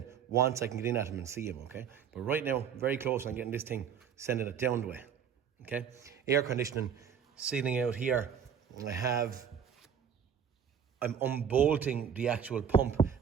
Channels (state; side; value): quieter; left; 7.7 dB